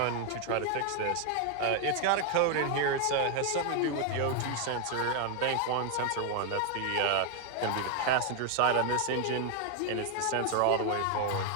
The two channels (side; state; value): both; different; correlation 0.01